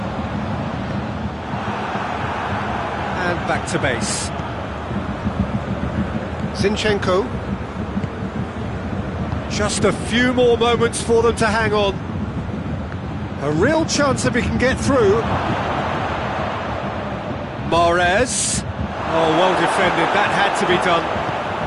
And back to base. Zinchenko. Just a few more moments for them to hang on. A real chance if he can get through. Mahrez. Oh, well defended. That had to be done.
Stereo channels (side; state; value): both; identical; correlation 1.00